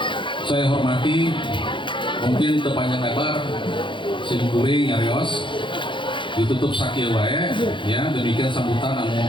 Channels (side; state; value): right; late; 0.24 ms